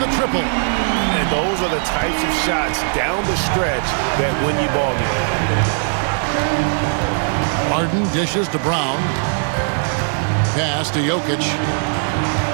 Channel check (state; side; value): silent; left; 67 dB below the other